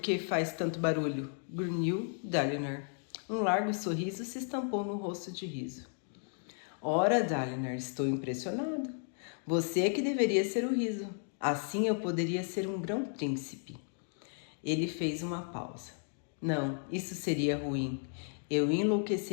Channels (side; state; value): right; silent; 55 dB below the other